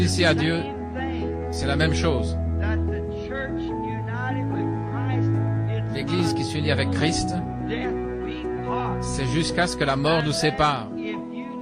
à Dieu, c'est la même chose. L'Église qui s'unit avec Christ, c'est jusqu'à ce que la mort nous sépare.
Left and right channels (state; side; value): identical; both; correlation 1.00